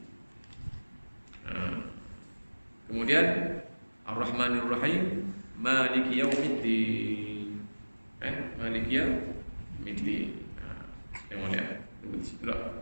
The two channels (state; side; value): inverted; both; correlation -1.00